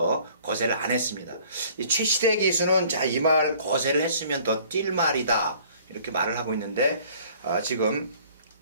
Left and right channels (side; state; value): both; inverted; correlation -0.54